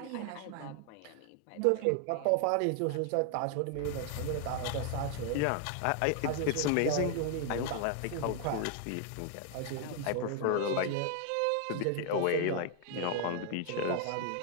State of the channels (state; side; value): different; both; correlation 0.00